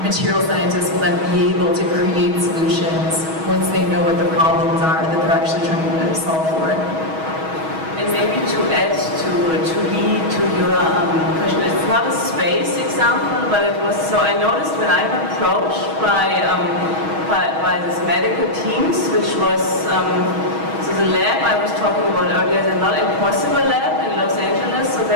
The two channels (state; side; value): late; left; 6.3 ms